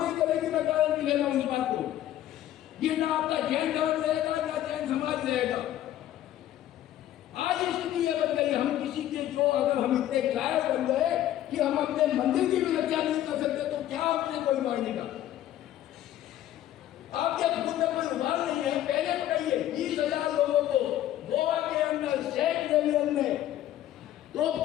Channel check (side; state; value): right; quieter; 12.6 dB